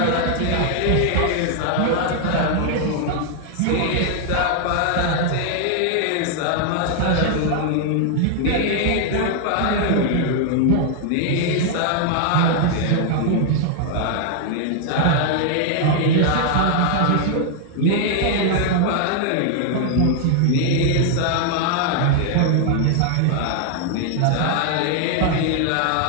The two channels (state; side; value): different; both; correlation 0.00